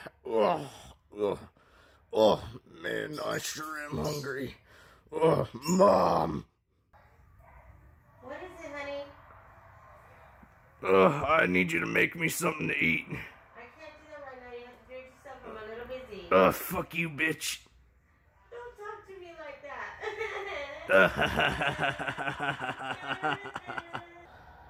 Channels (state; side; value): identical; both; correlation 1.00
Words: ugh, ugh. Oh, man, I sure am hungry. Mom. What is it, honey? I need you to make me something to eat. I can't do that right now. You have to do it yourself. I'm a little busy. Fuck you, bitch. Don't talk to me like